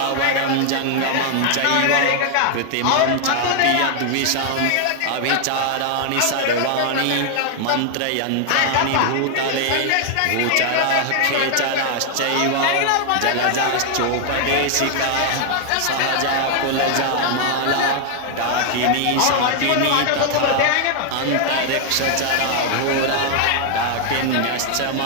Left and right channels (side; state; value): both; different; correlation 0.00